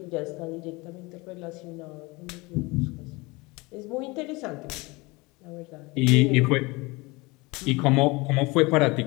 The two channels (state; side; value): quieter; right; 24.4 dB